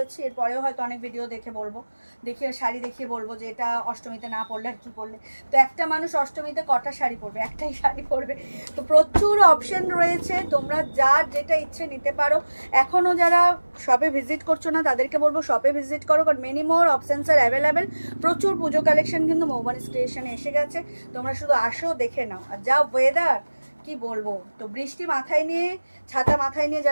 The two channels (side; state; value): both; inverted; correlation -1.00